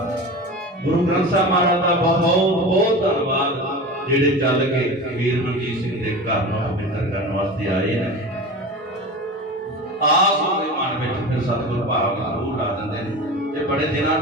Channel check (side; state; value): both; normal; correlation 0.31